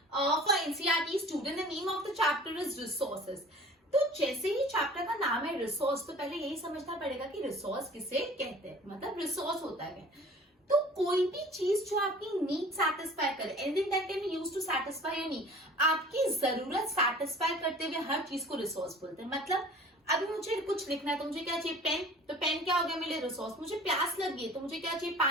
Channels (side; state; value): both; normal; correlation 0.46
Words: for NCERT student. The name of the chapter is resources. तो जैसे ही chapter का नाम है resource, तो पहले यही समझना पड़ेगा कि रिसोर्स किसे कहते हैं, मतलब रिसोर्स होता है। तो कोई भी चीज जो आपकी नीड सेटिस्फाई करे, anything that can be used to satisfy your need, आपकी जरूरत सेटिस्फाई करते हुए हर चीज को रिसोर्स बोलते हैं। मतलब अभी मुझे कुछ लिखना है तो मुझे क्या चाहिए, पेन। तो पेन क्या हो गया मेरे लिए रिसोर्स। मुझे प्यास लगी है तो मुझे क्या चाहिए,